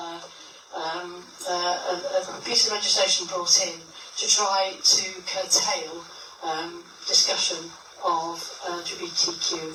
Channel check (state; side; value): identical; both; correlation 1.00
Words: piece of legislation brought in to try to curtail discussion of